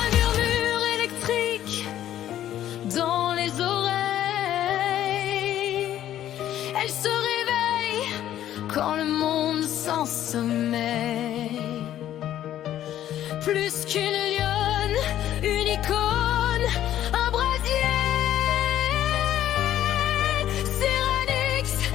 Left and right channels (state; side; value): quieter; right; 12.0 dB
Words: murmure électrique dans les oreilles. Elle se réveille quand le monde s'en sommeille. Plus qu'une lionne, une icône, un brasier. Cyranix